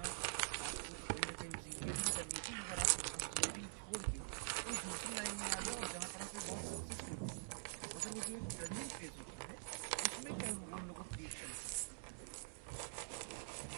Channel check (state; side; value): silent; left; digital silence